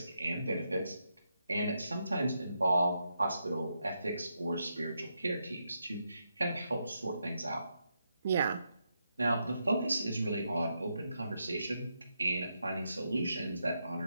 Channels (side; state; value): both; inverted; correlation -0.83